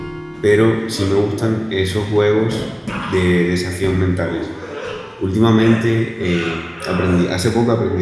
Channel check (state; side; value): identical; both; correlation 1.00